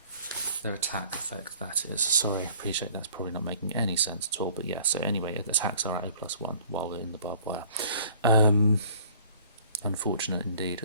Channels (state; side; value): inverted; both; correlation -0.53